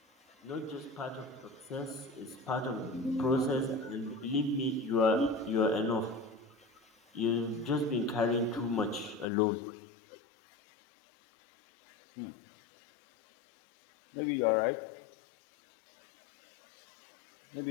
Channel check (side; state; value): right; drops out; at 9.2 s